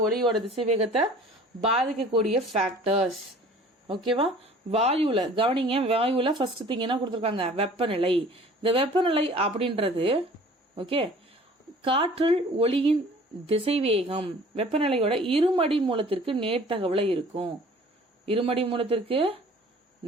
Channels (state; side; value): normal; both; correlation 0.48